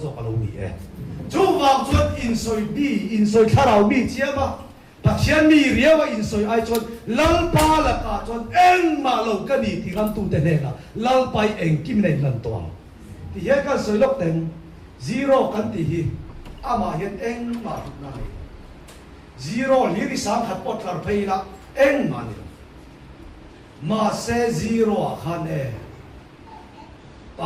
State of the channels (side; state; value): both; identical; correlation 1.00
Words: cho cái lâu nhỉ chú vào chuột in soi khá đầu mi chia mà bác sĩ mi riêng và in soi ai chuột lăng pa là cả chuột em mà lâu cái gì thì làm tu tên này là lăng pa em kim này lần toàn thì hiện cái soi lốc tên zero cái thì hi mà hiện em mà được này zero lý đi sáng hạt bọt thar phê là em mà sẽ zero khăn em